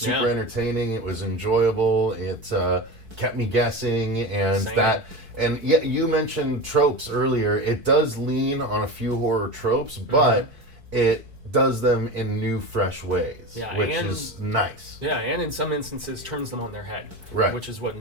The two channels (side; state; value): left; late; 4.6 ms